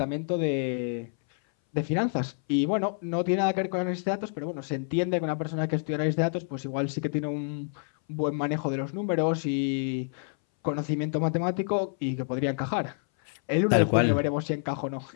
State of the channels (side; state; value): right; silent; 59 dB below the other